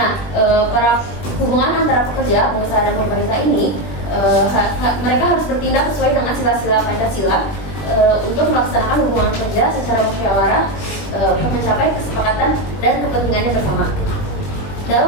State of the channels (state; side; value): late; right; 20 ms